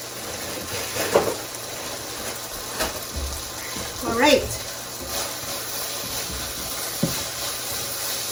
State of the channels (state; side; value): identical; both; correlation 1.00